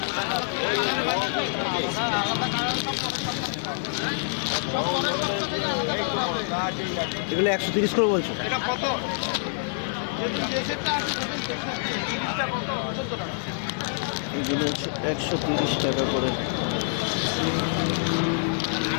এগুলো 130 করে বলছো? এগুলো হচ্ছে 130 টাকা করে।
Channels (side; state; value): right; silent; digital silence